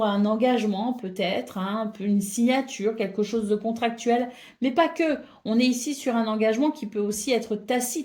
un engagement peut-être, hein, une signature, quelque chose de contractuel, mais pas que. On est ici sur un engagement qui peut aussi être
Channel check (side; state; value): both; identical; correlation 1.00